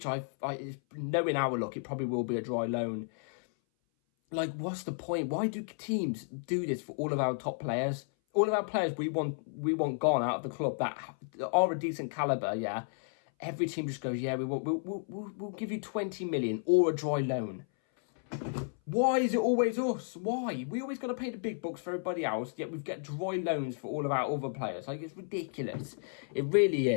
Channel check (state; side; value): silent; right; 56 dB below the other